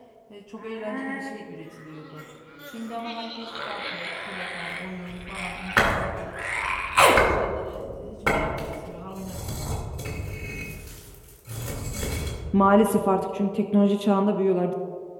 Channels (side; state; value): both; identical; correlation 1.00